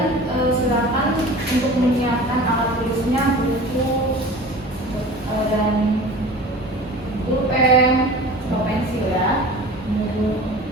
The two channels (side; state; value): both; normal; correlation 0.39